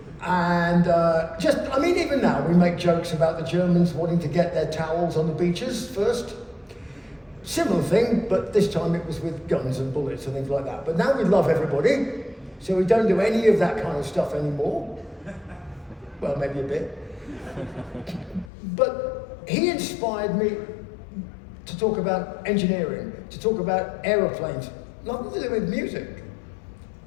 And even now we make jokes about the Germans wanting to get their towels on the beaches first. Similar thing, but this time it was with guns and bullets and things like that. But now we love everybody, so we don't do any of that kind of stuff anymore. Well, maybe a bit. But he inspired me to talk about engineering, to talk about aeroplanes, nothing to do with music.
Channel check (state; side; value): drops out; right; at 18.5 s